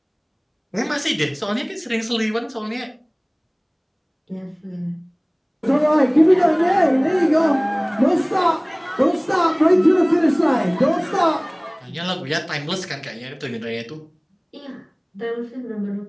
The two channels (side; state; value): both; identical; correlation 1.00